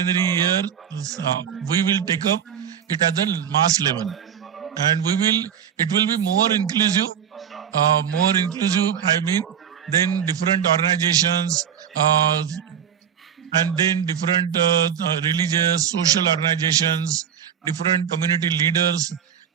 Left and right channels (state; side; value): quieter; left; 8.5 dB